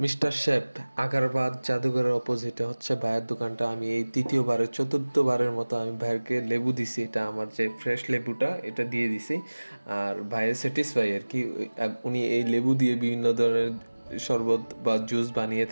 Mister shape আগারবাদ জাদুঘরের অপোজিটে হচ্ছে ভাইয়ের দোকানটা। আমি এই চতুর্থবারের মতো আমি ভাইয়েরকে লেবু দিছি। এটা আমার যে ফ্রেশ লেবুটা এটা দিয়ে দিছি। আর ভাইয়ের স্যাটিসফাই আর কি। উনি এই লেবু দিয়ে বিভিন্ন ধরনের শরবত বা জুস বানিয়ে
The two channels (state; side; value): inverted; both; correlation -1.00